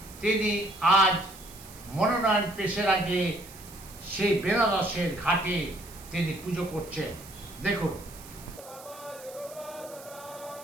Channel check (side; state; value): right; noise; hiss, 18 dB below the sound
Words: তিনি আজ মনোনয়ন পেশের আগে সেই বেনারসের ঘাটে তিনি পুজো করছেন। দেখুন।